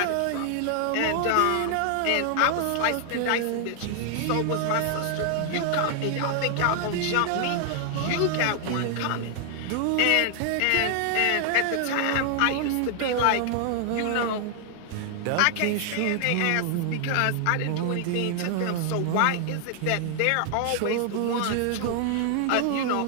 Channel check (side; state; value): both; different; correlation 0.00